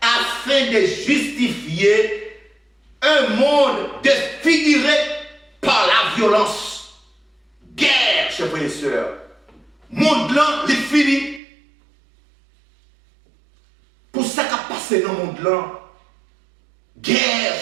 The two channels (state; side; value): drops out; left; at 11.4 s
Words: afin de justifier un monde défiguré par la violence. Guerre, chers frères et sœurs. Monde là, il est fini. Pour ça qu'a passé dans le monde là. Guerre,